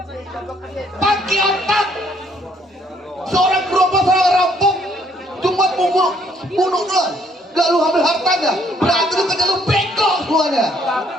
Pakai otak. Seorang gerobak, seorang rampok, cuma bunuh doang. Gak lu ambil hartanya, berarti lu kerja lu bego semuanya. Tapi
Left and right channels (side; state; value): both; normal; correlation 0.66